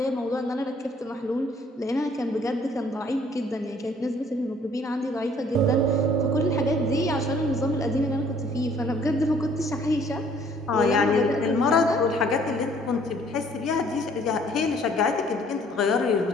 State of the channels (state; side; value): normal; both; correlation 0.59